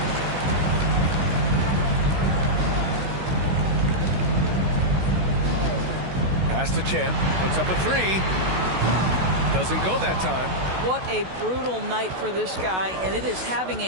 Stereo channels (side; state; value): left; late; 16 ms